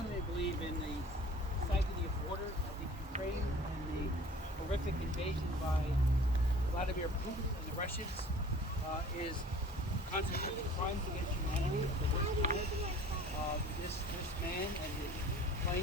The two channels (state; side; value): normal; both; correlation 0.47